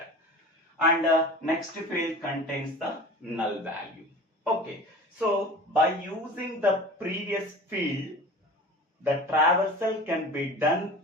And next field contains the null value. Okay, so by using the previous field, the traversal can be done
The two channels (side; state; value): both; normal; correlation 0.37